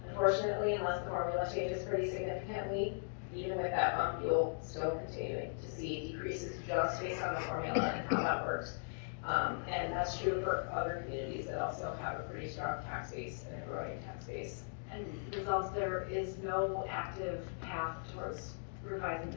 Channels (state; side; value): silent; right; digital silence